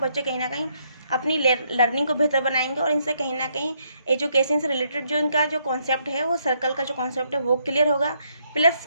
कहीं ना कहीं अपनी लर्निंग को बेहतर बनाएंगे और इनसे कहीं ना कहीं एजुकेशन से रिलेटेड जो इनका जो कॉन्सेप्ट है, वो सर्कल का जो कॉन्सेप्ट है वो क्लियर होगा।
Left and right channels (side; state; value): both; inverted; correlation -0.73